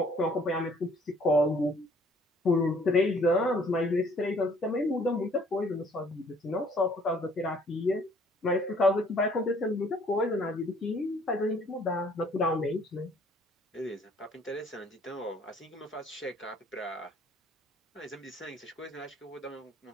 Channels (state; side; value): normal; both; correlation 0.59